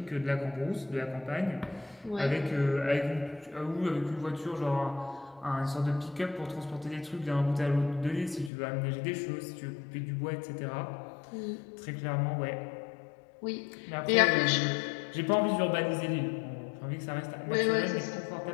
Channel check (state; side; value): drops out; right; at 8.5 s